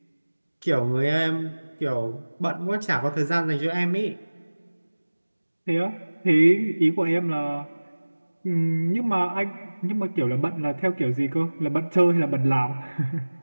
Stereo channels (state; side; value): inverted; both; correlation -1.00